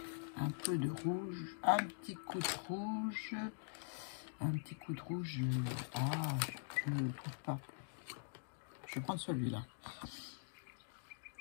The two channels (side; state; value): right; silent; digital silence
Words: Un peu de rouge, un petit coup de rouge. Un petit coup de rouge. Ah, je ne le trouve pas. Je vais prendre celui-là.